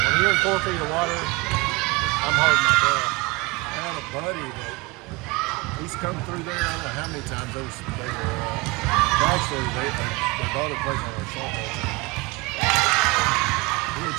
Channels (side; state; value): left; quieter; 24.5 dB